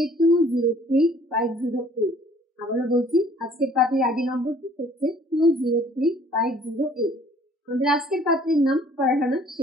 203508। আবারও বলছি, আজকের পাত্রীর আইডি নম্বরটি হচ্ছে 203508। আমাদের আজকের পাত্রীর নাম ফারহানা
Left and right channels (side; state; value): both; normal; correlation 0.56